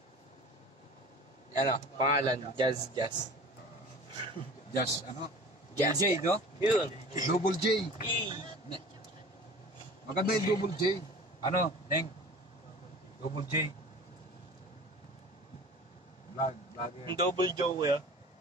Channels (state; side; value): normal; both; correlation 0.40